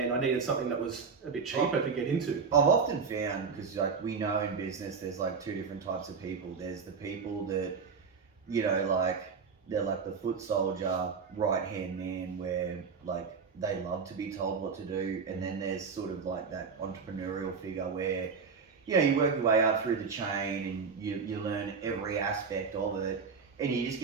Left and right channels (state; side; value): quieter; left; 5.4 dB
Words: I needed something that was a bit cheaper to get into. I've often found, because like we know in business, there's like two different types of people. There's the people that, you know, like they're like the foot soldier, right hand man, where like they love to be told what to do, and then there's sort of like that entrepreneurial figure where, you know, you work your way up through the chain and you learn every aspect of it, and you just